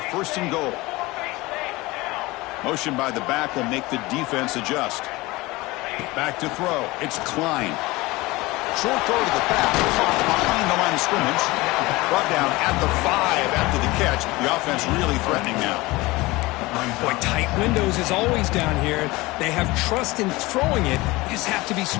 first and goal. Motion by the back will make the defense adjust. Back to throw. It's Klein. Short throw to the back. Caught behind the line of scrimmage. Brought down at the 5 after the catch. The offense really threatening now. Boy, tight windows is always down here. They have trust in throwing it. You just have to be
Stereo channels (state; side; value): quieter; right; 21.3 dB